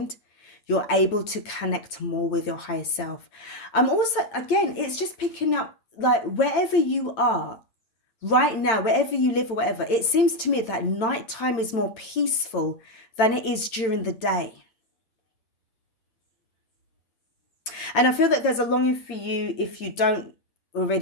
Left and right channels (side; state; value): right; late; 9.0 ms